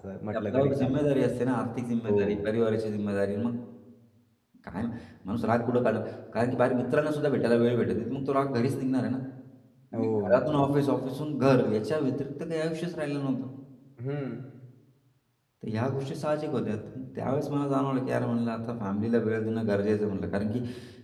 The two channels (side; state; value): both; identical; correlation 1.00